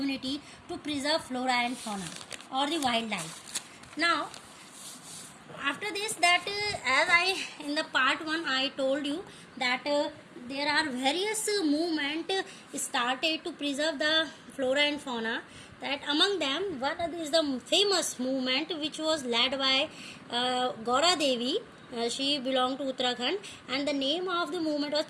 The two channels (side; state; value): both; identical; correlation 1.00